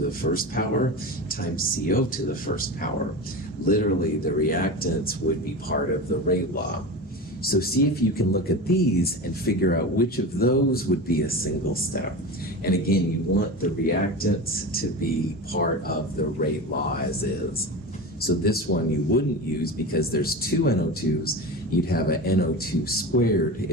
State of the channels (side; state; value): both; normal; correlation 0.27